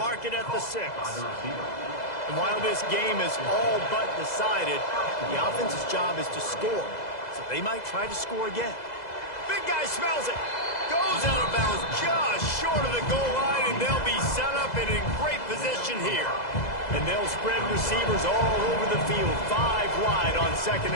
mark it at the 6. And while this game is all but decided, the offense's job is to score. So they might try to score again. Big guy smells it. Goes out of bounds just short of the goal line, and they'll be set up and in great position here. And they'll spread receivers all over the field, 5 wide on 2nd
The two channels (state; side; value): late; right; 2.0 ms